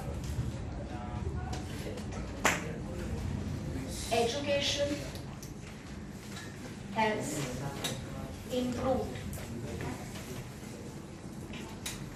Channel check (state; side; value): identical; both; correlation 1.00